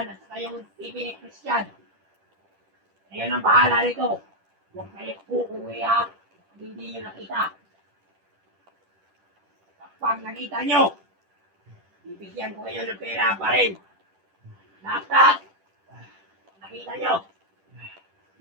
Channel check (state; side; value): late; left; 10 ms